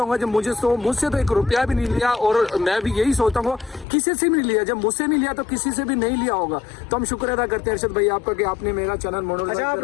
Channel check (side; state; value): right; drops out; at 3.9 s